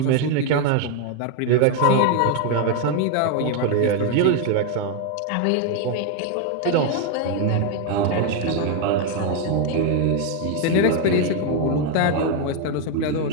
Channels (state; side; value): different; both; correlation 0.01